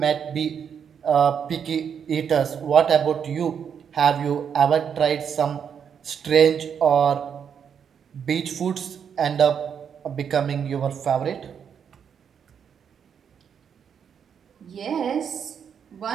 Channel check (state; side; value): quieter; left; 7.6 dB